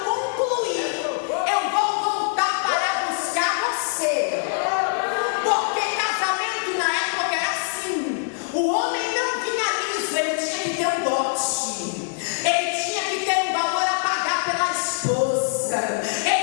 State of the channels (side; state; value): right; silent; 63 dB below the other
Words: eu vou voltar para buscar você. Porque casamento na época era assim: o homem não vinha liso, ele tinha que ter um dote, ele tinha que ter um valor a pagar pela esposa,